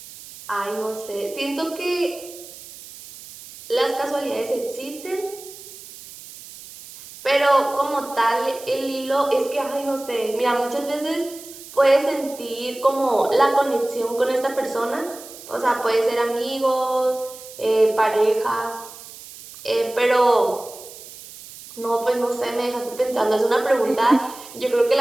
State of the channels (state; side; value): noise; right; hiss, 16 dB below the sound